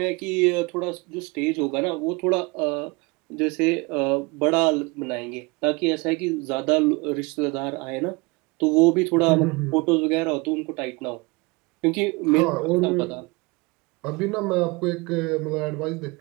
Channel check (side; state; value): left; quieter; 26.5 dB